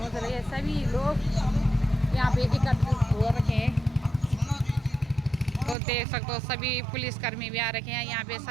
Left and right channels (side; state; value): left; drops out; at 5.8 s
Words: रहे सभी लोग यहाँ पे एकत्रित हो रखे हैं। तो देख सकते हो सभी पुलिसकर्मी भी आ रखे हैं यहाँ पे,